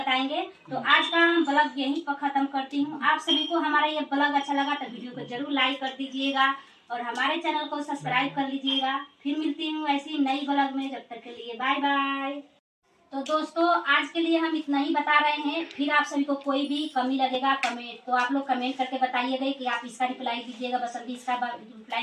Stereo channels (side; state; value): both; identical; correlation 1.00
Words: तो आज का हम ब्लॉग यहीं पर खत्म करती हूँ। आप सभी को हमारा ये ब्लॉग अच्छा लगा तो वीडियो को जरूर लाइक कर दीजिएगा और हमारे चैनल को सब्सक्राइब कर लीजिएगा। फिर मिलती हूँ ऐसी नई ब्लॉग में। जब तक के लिए बाय बाय। तो दोस्तों आज के लिए हम इतना ही बता रहे हैं। फिर आप सभी को कोई भी कमी लगेगा कमेंट तो आप लोग कमेंट करके बताइएगा कि आप इसका रिप्लाई दीजिएगा, बसंती इसका